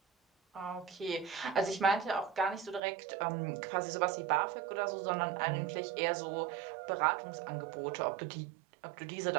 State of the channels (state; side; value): drops out; left; at 2.8 s